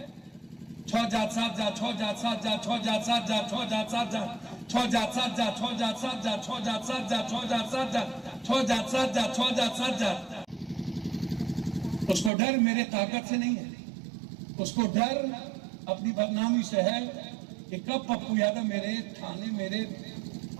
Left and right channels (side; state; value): left; drops out; at 12.3 s